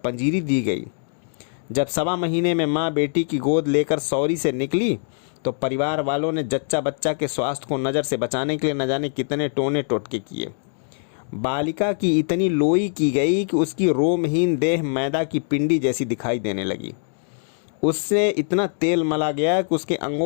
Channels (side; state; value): right; silent; digital silence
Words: दी गई। जब 1.25 महीने में माँ बेटी की गोद लेकर सौरी से निकली, तो परिवार वालों ने जच्चा बच्चा के स्वास्थ्य को नज़र से बचाने के लिए न जाने कितने टोने टोटके किए। बालिका की इतनी लोई की गई कि उसकी रोमहीन देह मैदा की पिंडी जैसी दिखाई देने लगी। उससे इतना तेल मला गया कि उसके